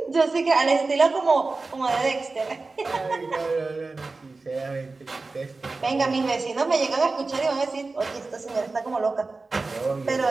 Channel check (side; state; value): left; quieter; 3.7 dB